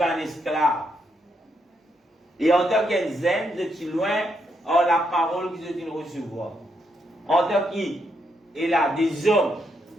un esclave. Et en tant que zen, je suis loin en la parole que je viens recevoir. En tant qu'il a des hommes,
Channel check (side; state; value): both; normal; correlation 0.78